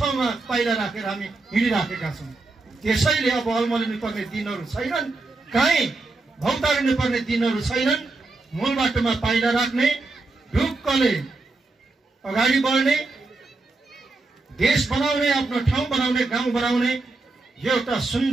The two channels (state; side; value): quieter; left; 3.4 dB